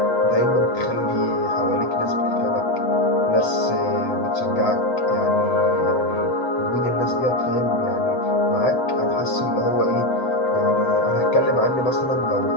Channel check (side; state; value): right; late; 7.7 ms